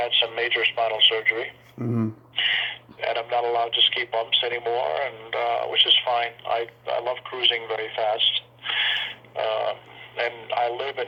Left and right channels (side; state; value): both; identical; correlation 1.00